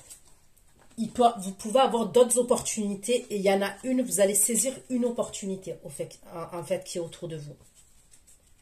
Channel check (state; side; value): identical; both; correlation 1.00